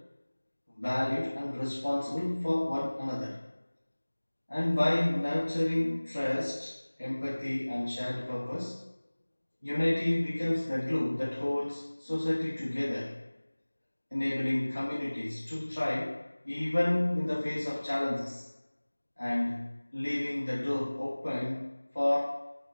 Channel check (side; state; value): both; inverted; correlation -1.00